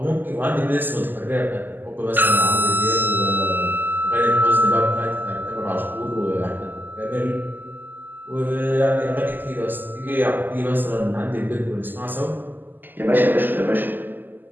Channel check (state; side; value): late; left; 0.090 ms